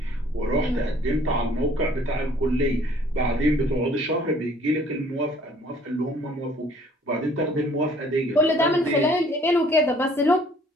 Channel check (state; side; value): normal; both; correlation 0.57